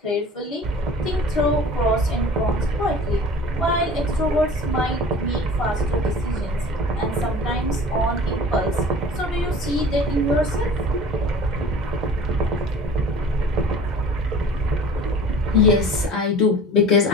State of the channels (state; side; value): normal; both; correlation 0.43